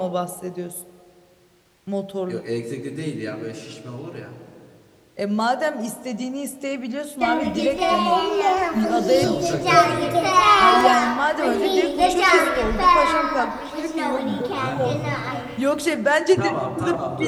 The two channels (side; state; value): both; identical; correlation 1.00